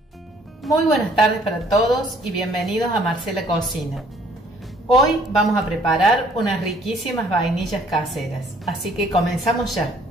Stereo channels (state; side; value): normal; both; correlation 0.60